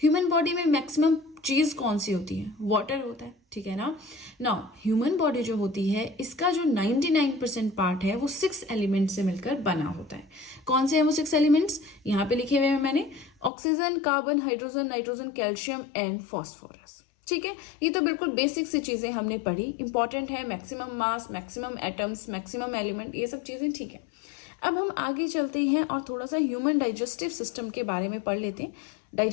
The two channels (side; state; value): right; drops out; at 13.5 s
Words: बॉडी में मैक्सिमम चीज कौन सी होती है? वाटर होता है, ठीक है ना। नाउ ह्यूमन बॉडी जो होती है इसका जो 99% पार्ट है वो 6 एलिमेंट से मिलकर बना होता है। कौन से हैं वो 6 एलिमेंट्स? यहाँ पे लिखे हुए हैं मैंने, oxygen, carbon, hydrogen, nitrogen, calcium and phosphorus. ठीक है, ये तो बिल्कुल बेसिक सी चीजें हमने पढ़ी, इंपॉर्टेंट है। मैक्सिमम मास, मैक्सिमम एटम्स, मैक्सिमम एलिमेंट, ये सब चीजें ठीक है। अब हम आगे चलते हैं और थोड़ा सा ह्यूमन डाइजेस्टिव सिस्टम के बारे में पढ़ लेते हैं।